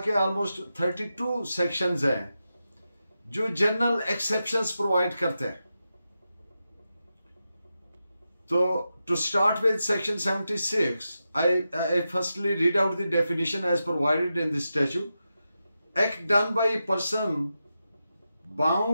ऑलमोस्ट 32 सेक्शंस हैं जो जनरल एक्सेप्शंस प्रोवाइड करते हैं। So, to start with section 76, I firstly read out the definition as provided in the statute. Act done by a person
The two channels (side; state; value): both; inverted; correlation -0.90